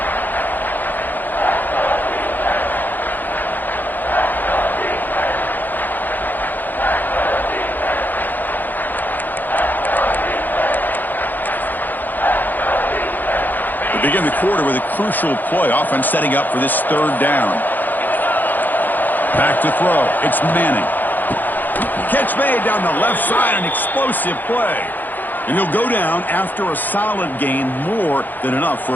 Begin the quarter with a crucial play. Offense setting up for this third down. Back to throw. It's Manning. Catch made down the left side. An explosive play. And he'll go down after a solid gain, more than enough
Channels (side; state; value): right; late; 0.086 ms